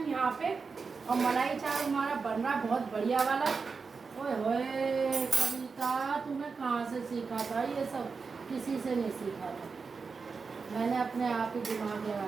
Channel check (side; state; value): left; quieter; 4.9 dB